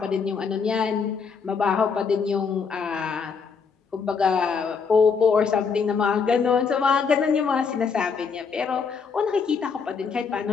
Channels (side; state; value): right; quieter; 5.6 dB